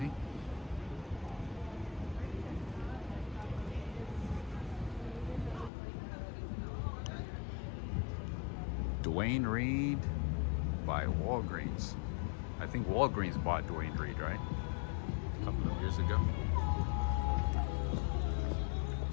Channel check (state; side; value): drops out; right; at 5.7 s